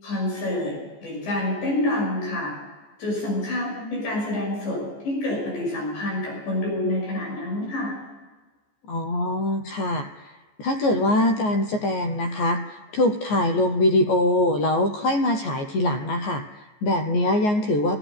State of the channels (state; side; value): late; right; 14 ms